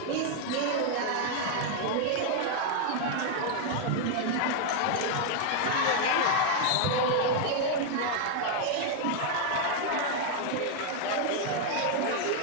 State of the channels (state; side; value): different; both; correlation 0.00